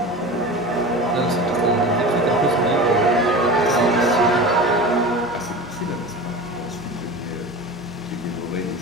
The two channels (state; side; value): normal; both; correlation 0.32